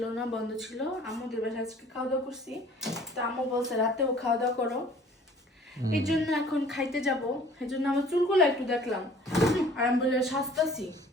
না, বন্ধ ছিল। আমাদের বাসায় আজকে খাওয়া দাওয়া করছি, তো আম্মু বলছে রাতেও খাওয়া দাওয়া করো, এই জন্য এখন খাইতে যাব। এই জন্য আমার চুলগুলো একটু দেখলাম আর আমি বলে সাজতাছি,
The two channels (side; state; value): both; normal; correlation 0.52